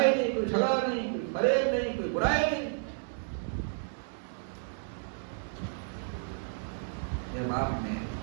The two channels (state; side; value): silent; left; digital silence